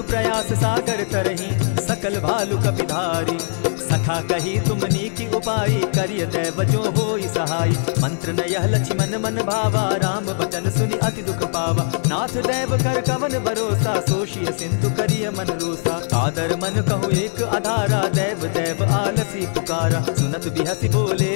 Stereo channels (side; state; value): right; silent; 65 dB below the other